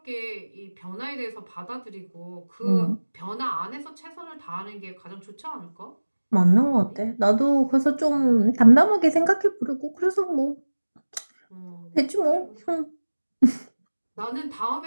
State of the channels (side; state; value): both; inverted; correlation -1.00